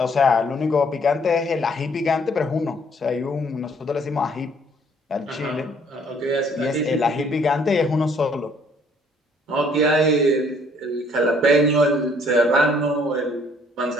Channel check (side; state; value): both; normal; correlation 0.62